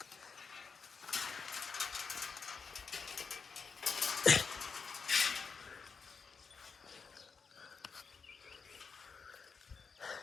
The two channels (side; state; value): right; quieter; 5.4 dB